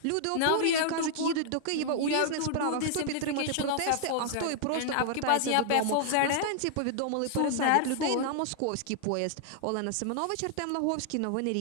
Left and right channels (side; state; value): both; different; correlation -0.01